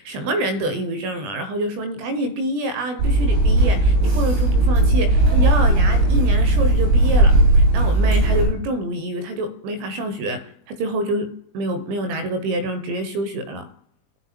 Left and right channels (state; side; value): late; left; 20 ms